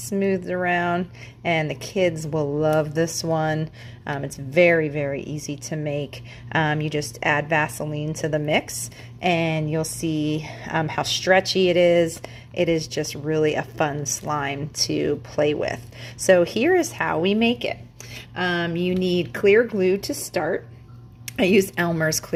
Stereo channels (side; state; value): both; identical; correlation 1.00